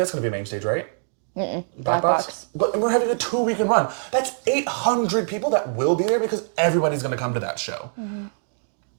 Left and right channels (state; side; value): silent; left; digital silence